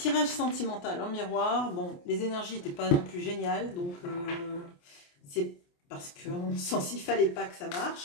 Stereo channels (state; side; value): late; right; 28 ms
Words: sentimental en miroir. Bon, les énergies n'étaient pas non plus géniales, donc c'est parce qu'on sent s'il fallait pas que ça